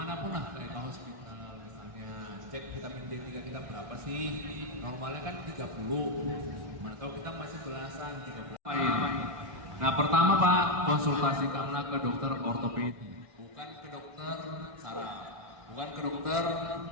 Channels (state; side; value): late; left; 1.5 ms